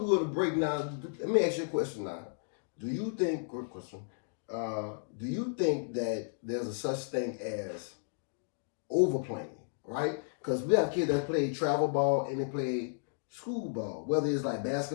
go to break, now let me ask you a question. Now, do you think? Good question. Do you think that there's a such thing as overplaying? Right? Because we have kids that play travel ball and they play school ball, whether it's like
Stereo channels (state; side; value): silent; right; digital silence